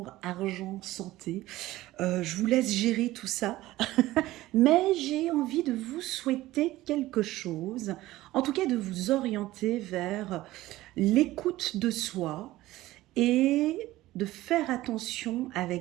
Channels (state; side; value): quieter; left; 16.8 dB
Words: argent, santé. Je vous laisse gérer tout ça. Mais j'ai envie de vous souhaiter quelque chose, en tout cas de vous orienter vers l'écoute de soi et de faire attention